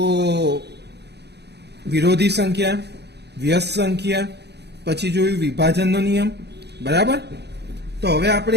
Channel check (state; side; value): late; left; 0.49 ms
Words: વિરોધી સંખ્યા, વ્યસ્ત સંખ્યા, પછી જોયું વિભાજનનો નિયમ. બરાબર? તો હવે આપણે